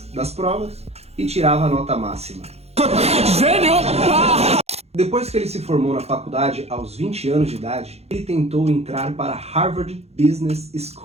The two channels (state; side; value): late; left; 0.30 ms